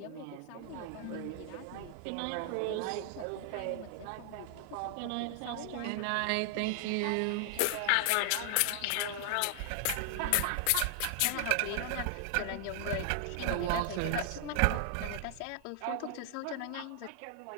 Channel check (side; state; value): both; different; correlation 0.00